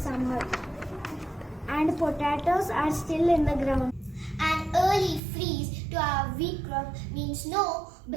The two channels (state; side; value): drops out; left; at 5.2 s